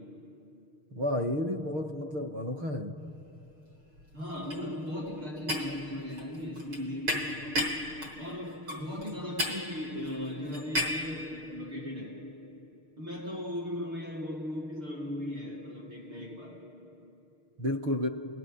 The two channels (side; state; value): left; late; 6.5 ms